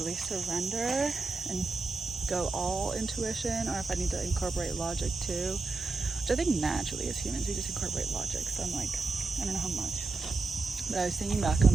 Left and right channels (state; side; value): quieter; left; 3.8 dB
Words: surrender and go all intuition, or if I need to incorporate logic too, which I think naturally as humans we just incorporate logic. So I'm like, I don't know how much. But I was thinking back